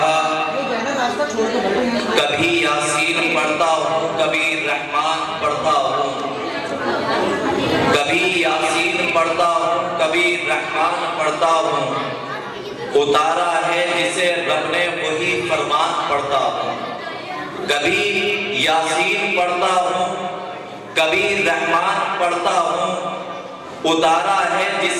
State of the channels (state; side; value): identical; both; correlation 1.00